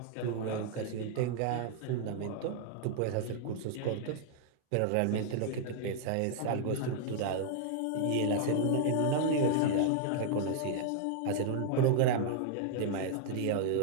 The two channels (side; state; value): both; different; correlation -0.01